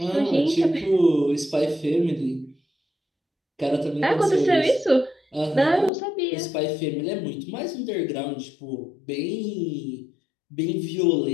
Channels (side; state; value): right; drops out; at 5.9 s